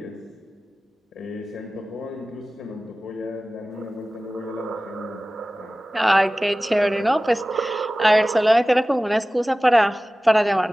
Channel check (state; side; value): normal; both; correlation 0.97